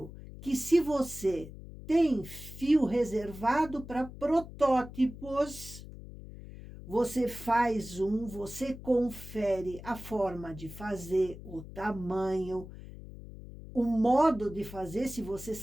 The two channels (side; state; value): left; noise; hum, 14 dB below the sound